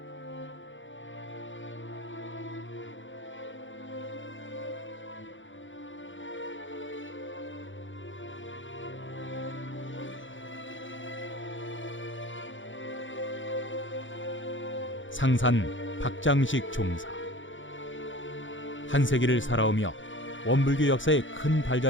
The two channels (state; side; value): late; right; 0.56 ms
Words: 상산 박장식 종사. 한 세기를 살아오며 원불교 역사에 큰